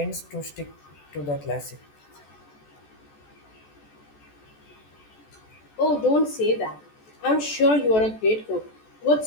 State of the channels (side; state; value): right; late; 14 ms